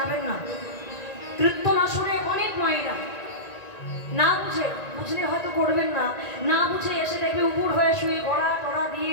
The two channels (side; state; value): right; late; 1.9 ms